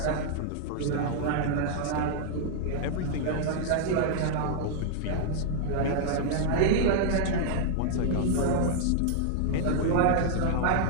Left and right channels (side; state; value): both; different; correlation -0.01